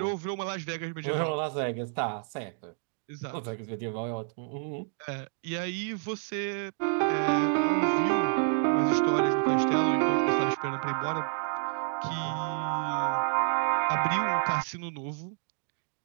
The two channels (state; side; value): silent; left; 57 dB below the other